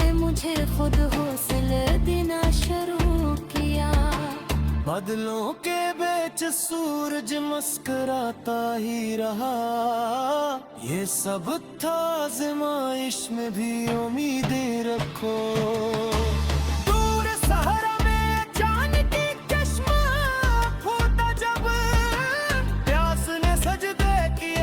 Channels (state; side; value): identical; both; correlation 1.00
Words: मुझे खुद हौसला देना शुरू किया। बादलों के बीच सूरज मुस्कुराता ही रहा, ये सब था आज़माइश में भी उम्मीदें रखो। दूर सहारा में चांद की चश्मा फूटा जब, प्यास ने सजदे